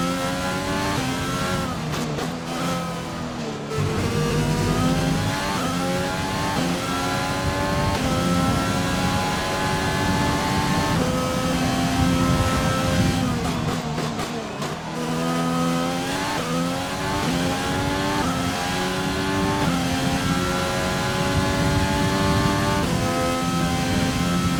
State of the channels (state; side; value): identical; both; correlation 1.00